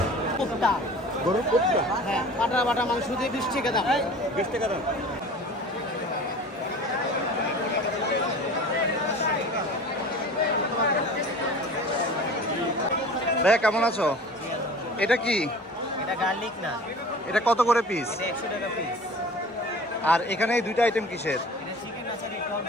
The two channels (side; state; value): both; normal; correlation 0.41